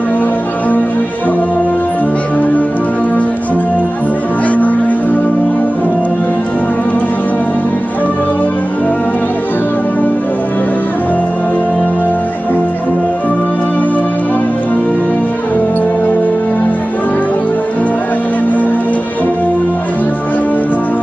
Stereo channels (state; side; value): normal; both; correlation 0.97